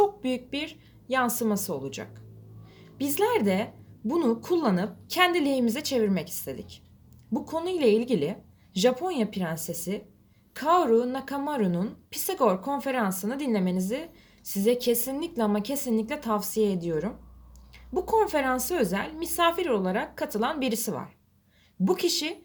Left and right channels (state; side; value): identical; both; correlation 1.00